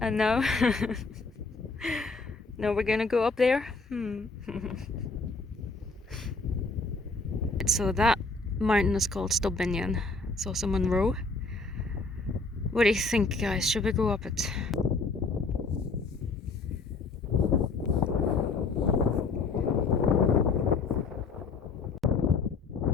now, now we're gonna go up there. So that mountain is called Stob Binnein. It's also Munro. What do you think, guys? Should we go up it?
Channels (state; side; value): quieter; right; 3.9 dB